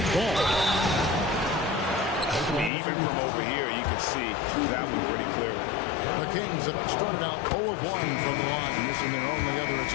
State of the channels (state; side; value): drops out; right; at 2.7 s